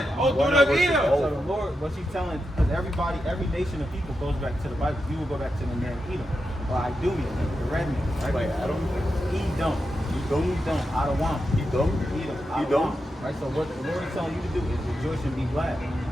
O daughter of Edom. So the Lord, what's he telling? Because every nation of people goes back to the Bible. You will go back to the man Edom, or Idumean, the red man, right? Like Adam? Edom, Adawam, Edom? Edom, Adawam. Right. So what the Lord is telling you to do is rejoice and be glad.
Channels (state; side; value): normal; both; correlation 0.88